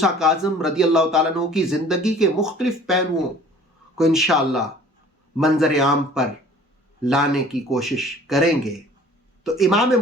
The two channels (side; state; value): both; normal; correlation 0.50